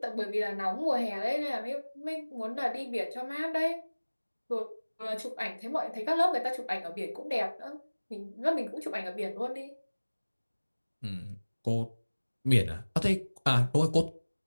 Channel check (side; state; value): both; inverted; correlation -1.00